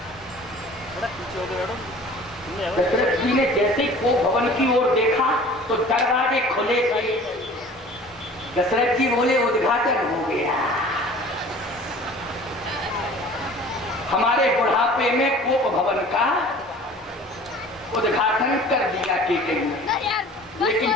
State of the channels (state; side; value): normal; both; correlation 0.46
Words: दशरथ जी ने जैसे ही को भवन की ओर देखा तो दरवाजे खुले गए। दशरथ जी बोले उद्घाटन हो गया। हमारे बुढ़ापे में कोप भवन का उद्घाटन कर दिया कि लेकिन